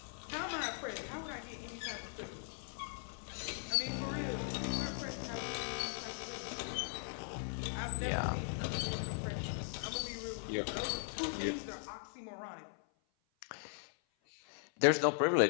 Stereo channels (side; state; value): right; silent; 52 dB below the other